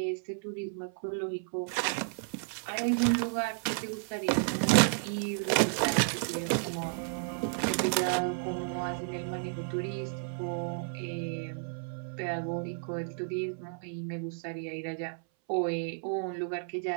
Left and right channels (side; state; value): left; silent; 56 dB below the other